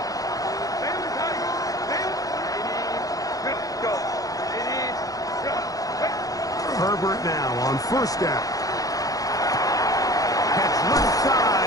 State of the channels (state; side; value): late; right; 0.17 ms